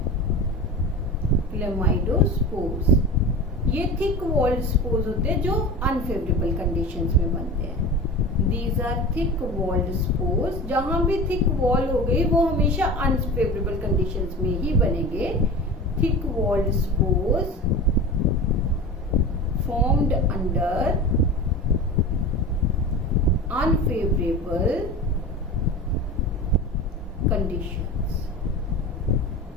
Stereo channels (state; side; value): normal; both; correlation 0.32